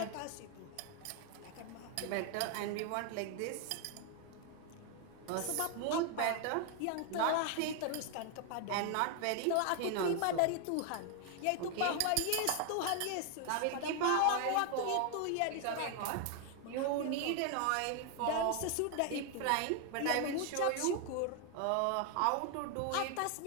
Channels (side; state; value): both; different; correlation 0.00